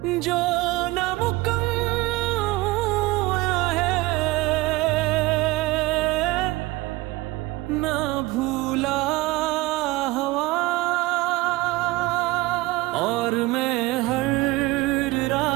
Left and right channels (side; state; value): left; quieter; 20.5 dB